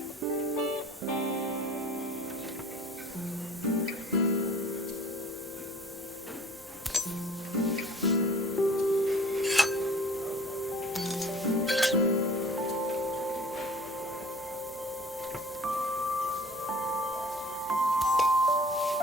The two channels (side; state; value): both; normal; correlation 0.48